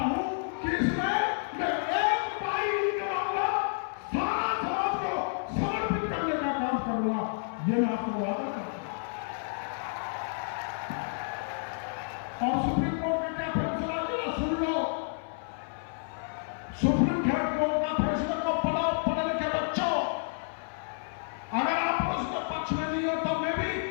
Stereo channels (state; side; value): silent; right; 57 dB below the other